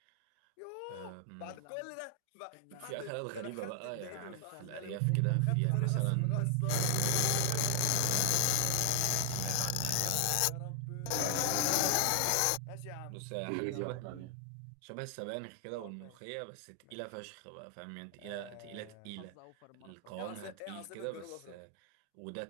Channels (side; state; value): both; different; correlation 0.00